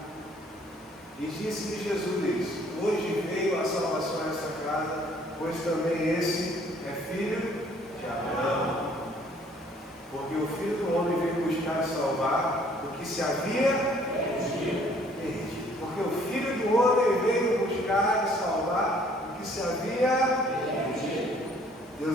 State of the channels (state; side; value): normal; both; correlation 0.60